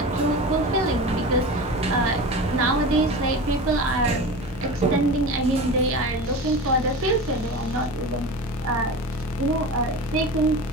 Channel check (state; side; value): normal; both; correlation 0.30